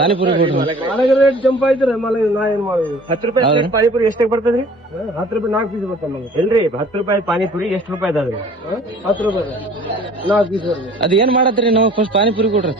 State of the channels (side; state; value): both; normal; correlation 0.49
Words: ರೇಟ್ ಜಂಪ್ ಆಯ್ತಾರೆ ನಾ ಏನ್ ಮಾಡುದು 10 ರೂಪಾಯಿ ಪಾನಿಪುರಿ ಎಷ್ಟಕ್ಕೆ ಬರ್ತದ್ರಿ 10 ರೂಪಾಯಿ 4 ಪೀಸ್ ಬರ್ತಾವ ಎಲ್ರಿ 10 ರೂಪಾಯಿ ಪಾನಿಪುರಿ ಎಷ್ಟು ರೂಪಾಯಿ ಅದಾದ್ರಿ 10 ರೂಪಾಯಿ 4 ಪೀಸ್ ಅದ್ ಏನ್ ಮಾಡತ್ರಿ ನಾವು ಫಸ್ಟ್ ಪಾನಿಪುರಿ ಕೊಡ್ರಿ